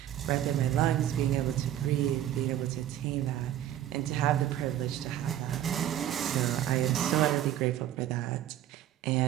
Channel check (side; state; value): left; quieter; 11.9 dB